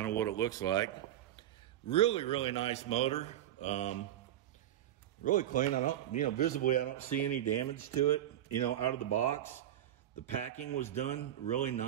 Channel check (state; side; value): quieter; left; 12.1 dB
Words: of what it looks like. Really, really nice motor. Really clean. I don't, you know, visibly, I don't see any damage to it, you know, out of the box. The packing was done really